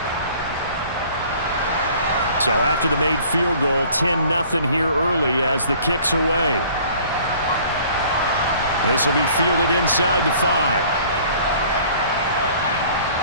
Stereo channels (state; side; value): inverted; both; correlation -0.52